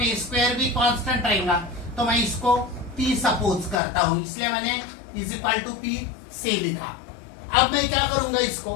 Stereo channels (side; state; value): right; drops out; at 3.8 s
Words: a स्क्वायर भी कांस्टेंट रहेगा, तो मैं इसको p सपोज करता हूं, इसलिए मैंने इज इक्वल टू p से लिखा। अब मैं क्या करूंगा, इसको